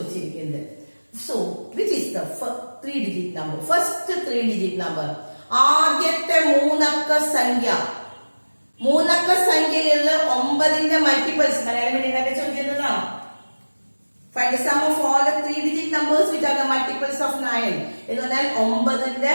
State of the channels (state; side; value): inverted; both; correlation -1.00